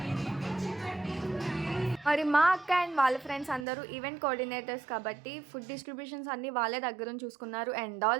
మరి మా అక్క అండ్ వాళ్ళ ఫ్రెండ్స్ అందరూ ఈవెంట్ కోఆర్డినేటర్స్ కాబట్టి ఫుడ్ డిస్ట్రిబ్యూషన్స్ అన్నీ వాళ్ళే దగ్గరుండి చూసుకున్నారు అండ్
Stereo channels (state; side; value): drops out; left; at 3.7 s